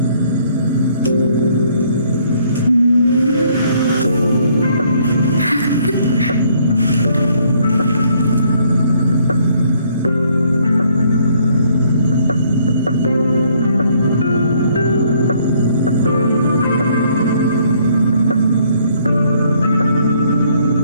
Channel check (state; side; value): inverted; both; correlation -0.65